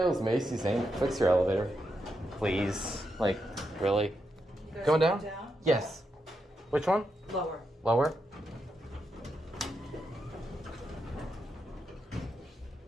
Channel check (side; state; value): both; normal; correlation 0.84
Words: Macy's ain't fix your elevator. Please. Like, really? Going down? Yes. Which one? Lower. Lower?